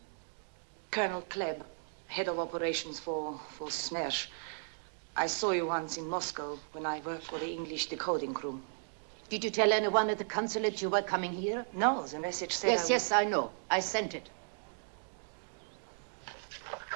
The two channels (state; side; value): silent; left; digital silence